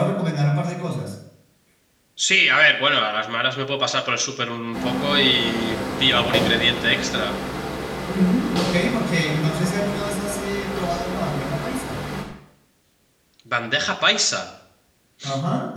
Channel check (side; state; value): both; identical; correlation 1.00